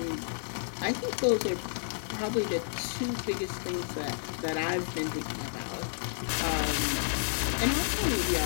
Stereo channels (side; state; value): right; silent; digital silence